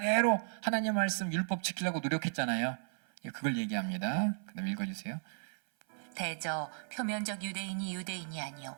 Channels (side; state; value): left; silent; 54 dB below the other